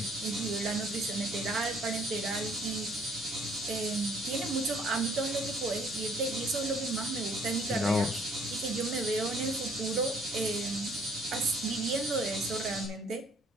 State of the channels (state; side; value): normal; both; correlation 0.62